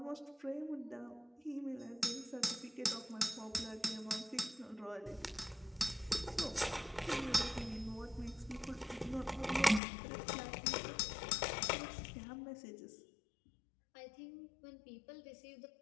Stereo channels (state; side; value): drops out; right; at 9.8 s